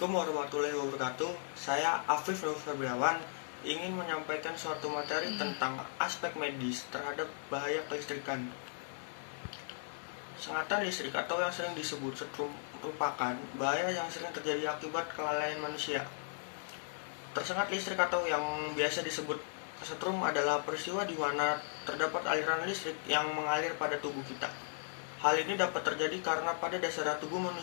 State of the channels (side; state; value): right; silent; digital silence